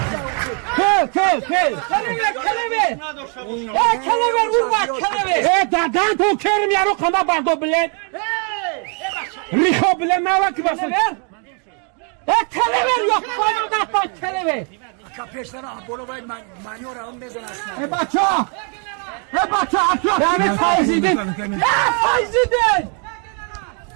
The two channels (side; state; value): left; quieter; 39.5 dB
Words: Kelebe. Kelebe vurma kelebe. Dadan to kerim yaro kana bardo bilen. Riho bilen ne var ki basın? Kelebe yok bana da kelebe. Ebaça! Atıyor! Yani faizidin.